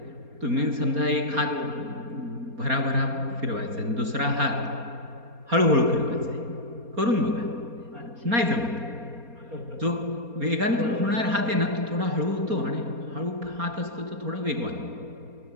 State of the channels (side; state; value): left; late; 4.3 ms